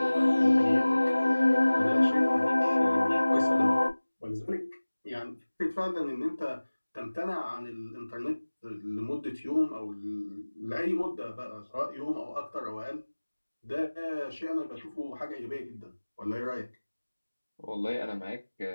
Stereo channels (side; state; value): both; inverted; correlation -1.00